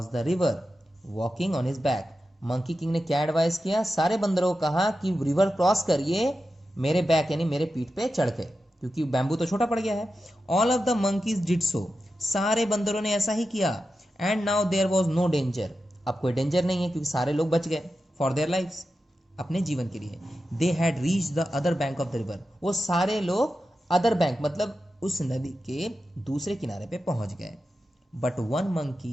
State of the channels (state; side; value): normal; both; correlation 0.91